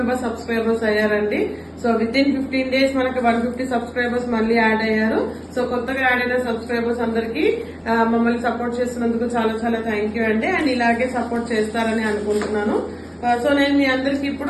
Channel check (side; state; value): both; identical; correlation 1.00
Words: సబ్స్క్రైబర్స్ అయ్యారండి. సో విత్ ఇన్ 15 days మనకి 150 సబ్స్క్రైబర్స్ మళ్ళీ యాడ్ అయ్యారు. సో కొత్తగా యాడ్ అయిన సబ్స్క్రైబర్స్ అందరికి మమ్మల్ని సపోర్ట్ చేస్తున్నందుకు చాలా చాలా థ్యాంక్ యూ అండి. అండ్ ఇలాగే సపోర్ట్ చేస్తారని అనుకుంటున్నాను. సో నేను మీ అందరికి